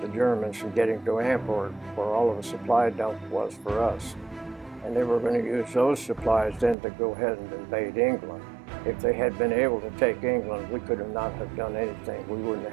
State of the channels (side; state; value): left; drops out; at 6.8 s